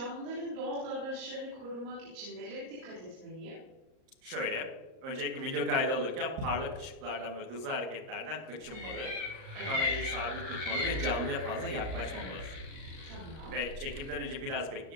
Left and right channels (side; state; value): left; late; 38 ms